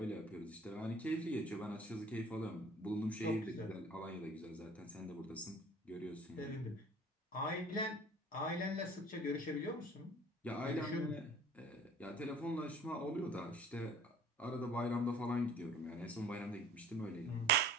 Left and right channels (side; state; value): both; normal; correlation 0.48